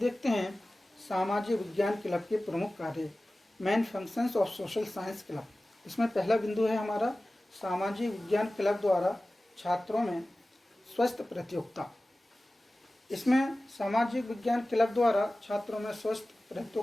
हैं सामाजिक विज्ञान क्लब के प्रमुख कार्य, main functions of social science club. इसमें पहला बिंदु है हमारा सामाजिक विज्ञान क्लब द्वारा छात्रों में स्वस्थ प्रतियोगिता। इसमें सामाजिक विज्ञान क्लब द्वारा छात्रों में स्वस्थ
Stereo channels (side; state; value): both; normal; correlation 0.97